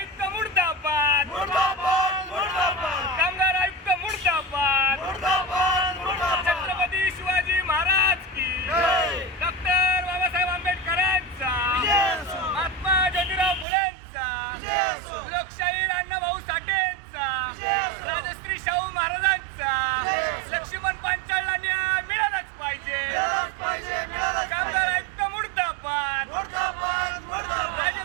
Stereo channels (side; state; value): left; drops out; at 13.7 s